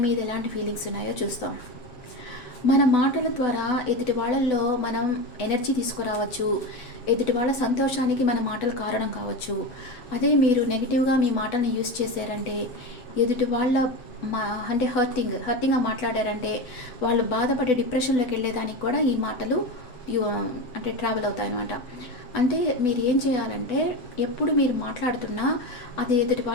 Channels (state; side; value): late; right; 8.0 ms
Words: మీద ఎలాంటి ఫీలింగ్స్ ఉన్నాయో చూస్తాం. మన మాటల ద్వారా ఎదుటి వాళ్ళల్లో మనం ఎనర్జీ తీసుకురావచ్చు. ఎదుటి వాళ్ళ సంతోషానికి మన మాటలు కారణం కావచ్చు. అదే మీరు నెగిటివ్గా మీ మాటల్ని యూస్ చేశారంటే, ఎదుటి వాళ్ళ అంటే హర్టింగ్గా మాట్లాడారంటే, వాళ్ళు బాధపడి డిప్రెషన్లోకి వెళ్ళేదానికి కూడా ఈ మాటలు అంటే ట్రావెల్ అవుతాయి అన్నమాట. అంటే మీరు ఏం చేయాలంటే, ఎప్పుడు మీరు మాట్లాడుతున్నా అది ఎదుటి